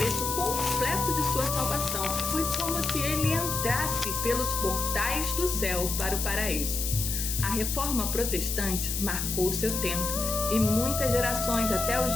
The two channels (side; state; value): left; noise; hiss, 2 dB below the sound